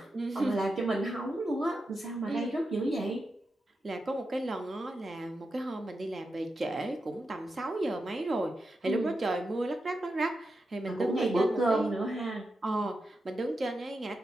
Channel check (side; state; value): both; normal; correlation 0.88